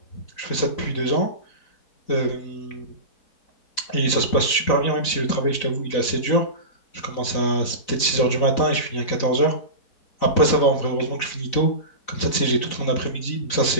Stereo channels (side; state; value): right; late; 4.0 ms